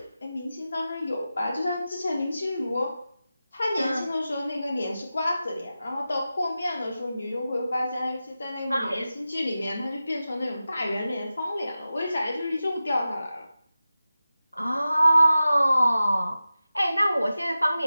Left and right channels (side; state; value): both; inverted; correlation -0.94